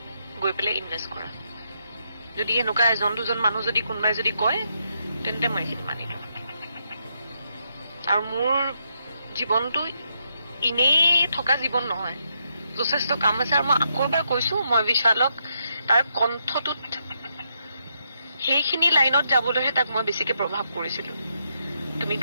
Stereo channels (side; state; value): both; inverted; correlation -0.79